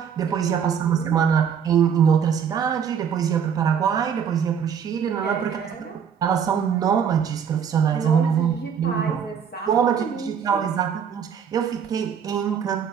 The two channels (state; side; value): quieter; left; 7.5 dB